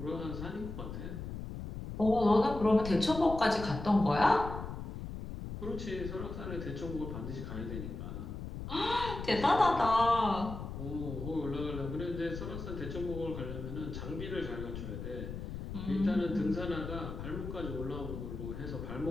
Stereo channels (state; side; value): noise; left; rumble, 7 dB below the sound